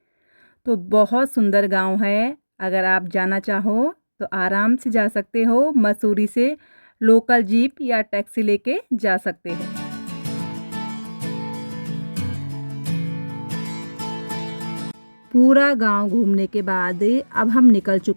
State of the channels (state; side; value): inverted; both; correlation -1.00